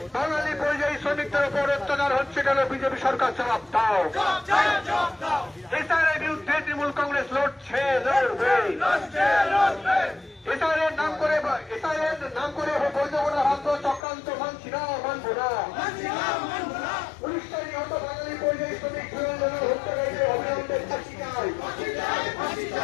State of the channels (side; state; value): right; drops out; at 14.0 s